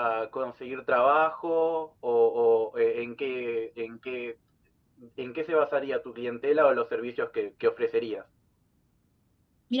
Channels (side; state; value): both; identical; correlation 1.00